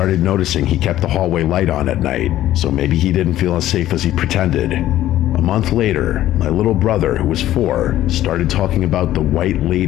noticing he kept the hallway light on at night, so maybe he didn't feel as safe as he pretended. A month later, my little brother, who was 4, started talking about the white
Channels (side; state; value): right; quieter; 13.6 dB